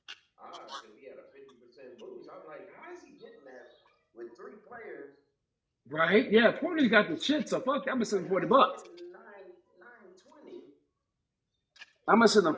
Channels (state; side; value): identical; both; correlation 1.00